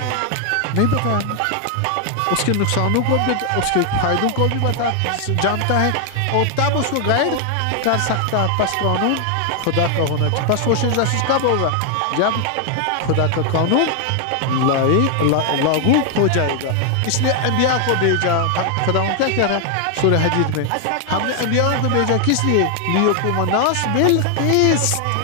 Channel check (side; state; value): both; different; correlation 0.00